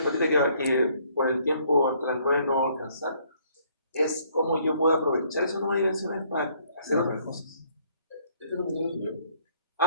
partida que por el tiempo hasta las 9 no voy a alcanzar es cómo yo puedo aprovechar esos números dimensionales para hacer otras cosas. ¿Este número lo subió?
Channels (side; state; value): both; inverted; correlation -0.64